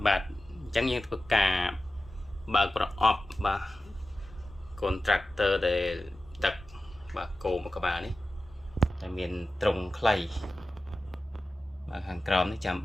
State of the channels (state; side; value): normal; both; correlation 0.94